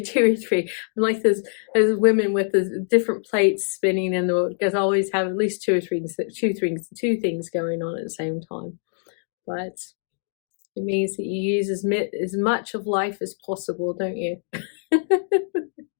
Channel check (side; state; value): right; silent; digital silence